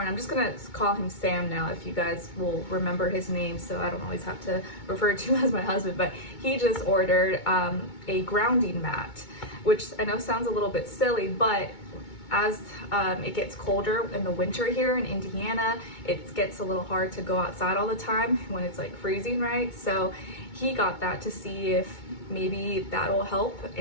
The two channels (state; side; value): late; right; 2.2 ms